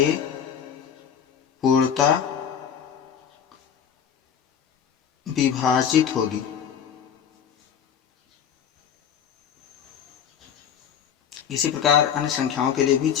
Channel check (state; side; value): quieter; right; 8.1 dB